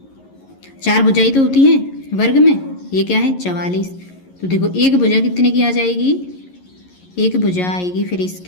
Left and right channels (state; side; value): late; right; 11 ms